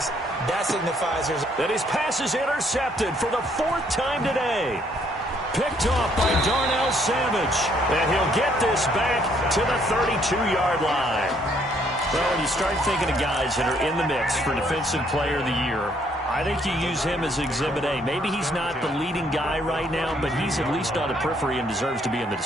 that signifies that his pass is intercepted for the 4th time today. Picked off by Darnell Savage. And he'll get this back to the 32-yard line. Well, when you start thinking of guys that are in the mix for Defensive Player of the Year, I think you use him as Exhibit A. Maybe he's not the leading guy right now, but he's at least on the periphery and deserves to be in the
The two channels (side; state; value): both; normal; correlation 0.67